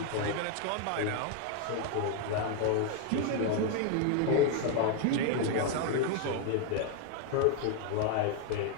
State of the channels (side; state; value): both; different; correlation 0.01